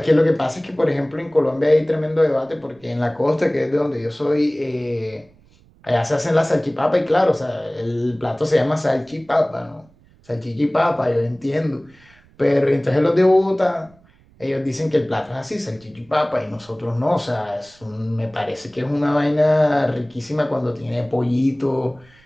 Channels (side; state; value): right; noise; rumble, 29 dB below the sound